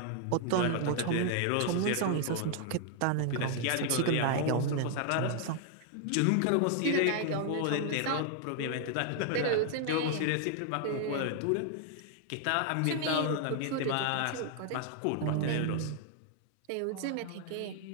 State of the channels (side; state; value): both; different; correlation 0.00